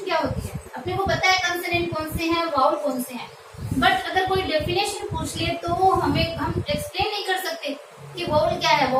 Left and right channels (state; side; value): identical; both; correlation 1.00